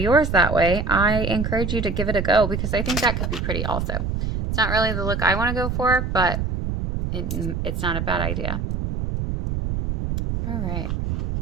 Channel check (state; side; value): noise; right; rumble, 2 dB below the sound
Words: that way, I encourage you to give it a go because I think that could be pretty also. It's not really the look I want to go for, but it's not a bad idea. All right.